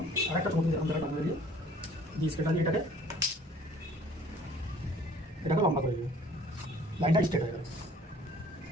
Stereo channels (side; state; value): both; normal; correlation 0.54